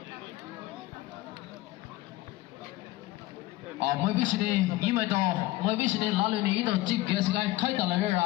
Mới biết gì ý mày đó mới biết gì lá lưỡi này đó chỉ cái cái khai tờ lại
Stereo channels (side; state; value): right; quieter; 17.5 dB